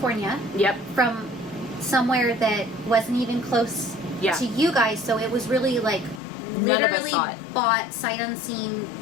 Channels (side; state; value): right; drops out; at 6.2 s